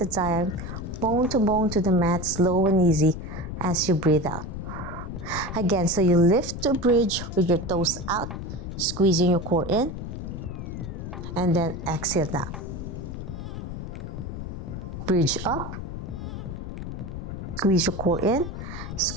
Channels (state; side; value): noise; left; rumble, 7 dB below the sound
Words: time, bone to the mat, slow and easy as you breathe out. Again, so you lift to bridge with your toes out, squeezing your core in, and then exhale down. Bridge up, squeeze your core in,